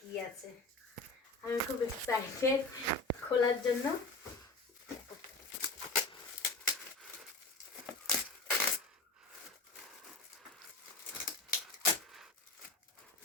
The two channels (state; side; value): quieter; right; 3.2 dB